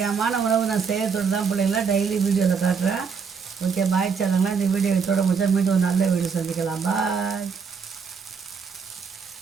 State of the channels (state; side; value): quieter; left; 5.8 dB